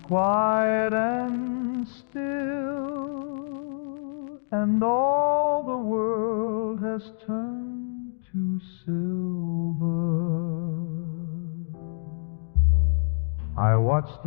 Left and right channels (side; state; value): right; silent; digital silence